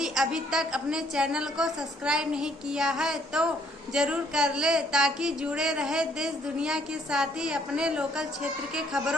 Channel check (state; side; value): normal; both; correlation 0.65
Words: अभी तक अपने चैनल को सब्सक्राइब नहीं किया है तो जरूर कर ले, ताकि जुड़े रहे देश दुनिया के साथ ही अपने लोकल क्षेत्र के